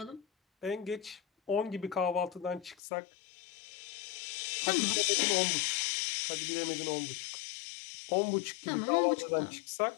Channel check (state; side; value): drops out; right; at 2.8 s